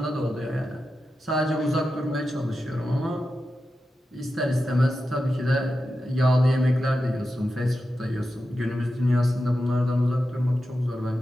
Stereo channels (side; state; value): both; normal; correlation 0.91